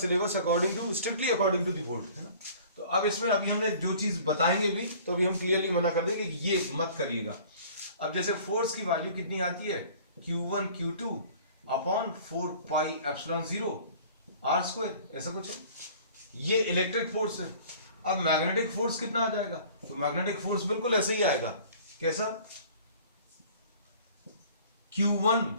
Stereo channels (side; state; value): both; inverted; correlation -0.49